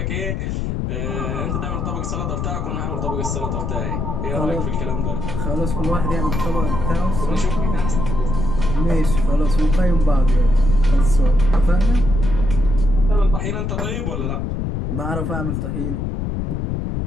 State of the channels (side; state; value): left; noise; rumble, 2 dB below the sound